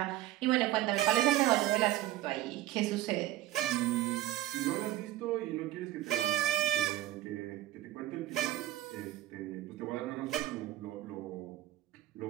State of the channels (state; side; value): quieter; left; 14.8 dB